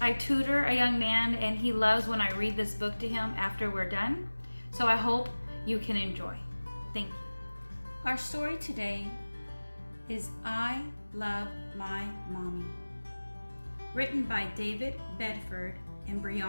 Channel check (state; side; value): inverted; both; correlation -1.00